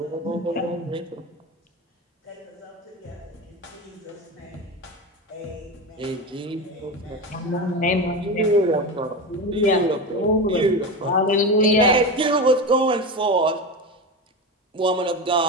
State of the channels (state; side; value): normal; both; correlation 0.22